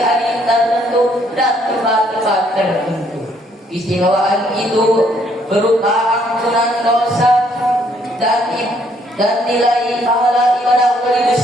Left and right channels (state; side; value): normal; both; correlation 0.67